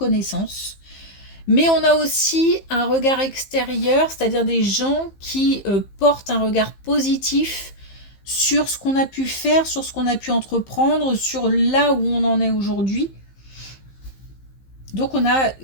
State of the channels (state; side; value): late; right; 15 ms